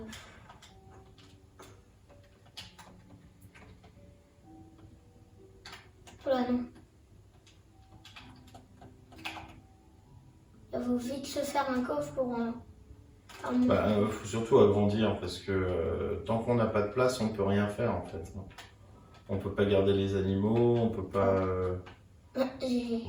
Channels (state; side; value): identical; both; correlation 1.00